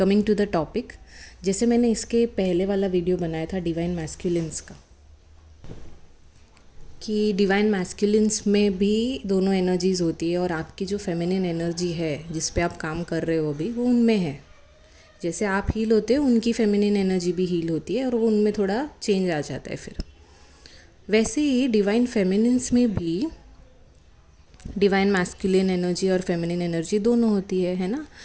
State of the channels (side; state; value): both; identical; correlation 1.00